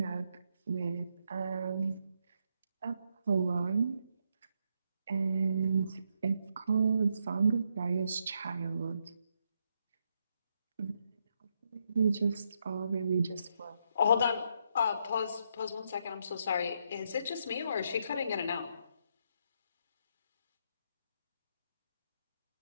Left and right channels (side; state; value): both; inverted; correlation -0.78